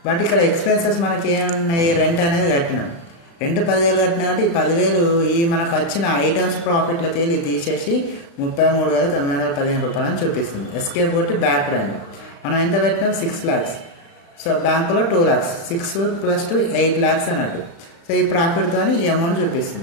బట్ ఇక్కడ ఎక్స్పెన్సెస్ మనకి ఏమున్నాయి, రెంట్ అనేది కట్టినాం. రెంట్ 10,000 కట్టినా కాబట్టి ఈ 10,000 ఈ మనకు వచ్చిన ఐటమ్స్ ప్రాఫిట్లో తీసేసి 33,915 రూపాయలు అని చూపిస్తుంది. ఎస్కేప్ కొట్టి బ్యాక్ రండి. మనం ఎంత పెట్టినాం 6 lakhs. సో బ్యాంకులో 2 lakhs, 6 + 2 8 lakhs అన్నట్టు. సో ఈ ప్రాఫిట్తో ఈ అమౌంట్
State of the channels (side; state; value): right; late; 36 ms